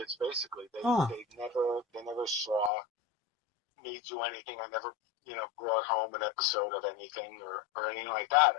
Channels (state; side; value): drops out; right; at 2.7 s